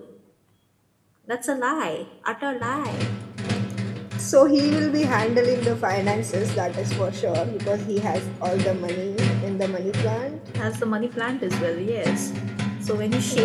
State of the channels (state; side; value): identical; both; correlation 1.00